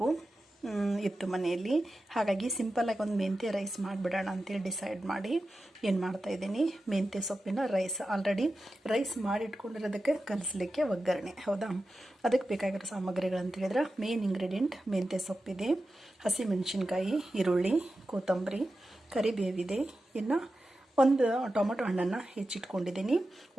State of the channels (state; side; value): normal; both; correlation 0.92